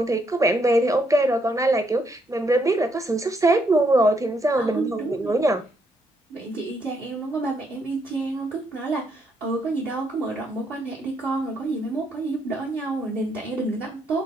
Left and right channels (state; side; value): normal; both; correlation 0.75